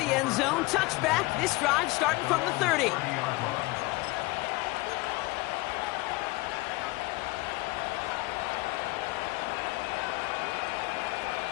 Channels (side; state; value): right; quieter; 22.3 dB